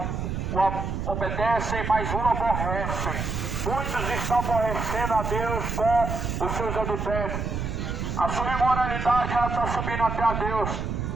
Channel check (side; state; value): right; noise; rumble, 3 dB below the sound